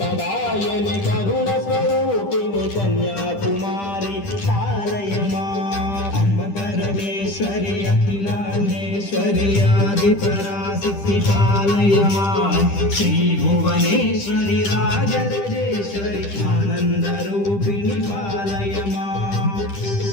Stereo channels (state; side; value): late; right; 10 ms